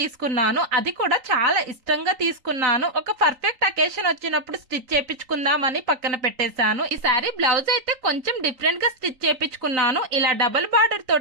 అది కూడా చాలా ఇష్టంగా తీసుకున్నాను. ఒక పర్ఫెక్ట్ అకేషన్ వచ్చినప్పుడు స్టిచ్ చేపించుకుందామని పక్కన పెట్టేశాను. ఈ శారీ బ్లౌజ్ అయితే కొంచెం డిఫరెంట్ గా స్టిచ్ చేపించుకున్నాను. ఇలా డబుల్ బార్డర్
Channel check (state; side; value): late; left; 3.9 ms